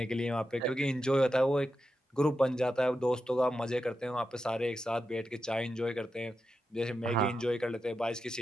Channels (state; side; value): normal; both; correlation 0.88